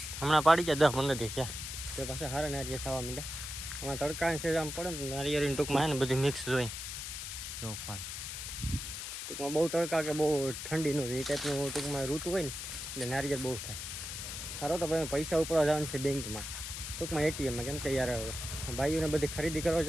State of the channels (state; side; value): noise; left; hiss, 6 dB below the sound